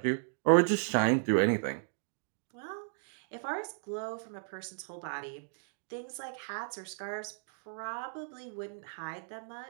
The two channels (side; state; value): left; silent; digital silence